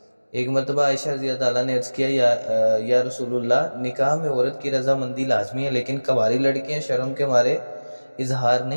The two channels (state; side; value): inverted; both; correlation -1.00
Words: ایک مرتبہ عائشہ رضی اللہ تعالیٰ نے عرض کیا، یا رسول اللہ، نکاح میں عورت کی رضامندی لازمی ہے، لیکن کنواری لڑکیاں شرم کے مارے اظہار